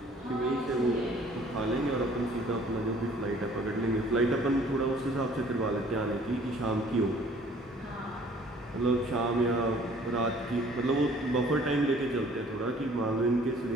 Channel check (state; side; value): normal; both; correlation 0.55